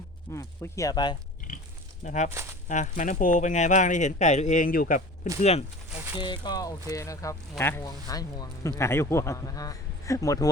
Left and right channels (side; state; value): both; normal; correlation 0.39